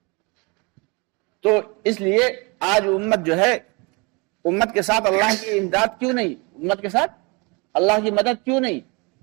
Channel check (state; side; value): quieter; left; 29.0 dB